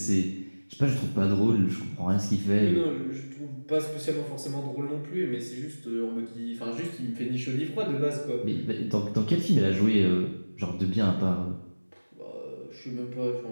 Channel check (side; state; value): both; inverted; correlation -1.00